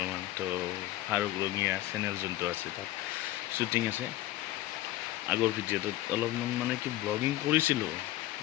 তো ফাৰুক ৰঙীয়া চেনেল যোনটো আছে তাত শ্বুটিং আছে। আগৰ ভিডিঅ'টোত অলপমান মানে কি ব্লগিং কৰিছিলোঁ,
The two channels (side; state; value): right; quieter; 15.4 dB